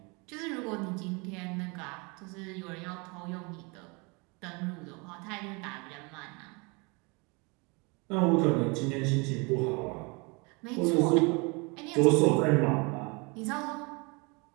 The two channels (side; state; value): left; quieter; 29.6 dB